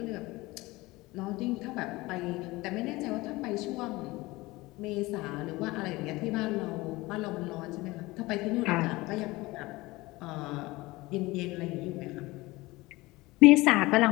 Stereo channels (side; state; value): right; quieter; 20.9 dB